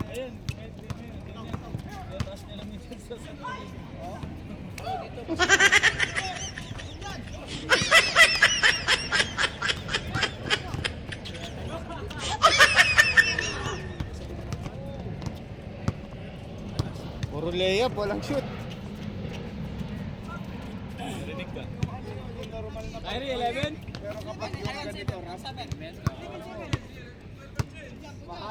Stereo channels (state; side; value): identical; both; correlation 1.00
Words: Ayun. Taas nila minsan sa Puro layup, walang shoot. Narinig ka. Normal na Kyrie, 11? pero kapag yung ganito, ramp,